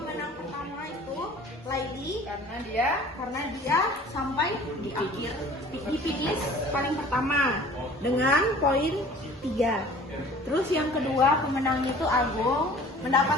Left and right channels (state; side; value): normal; both; correlation 0.47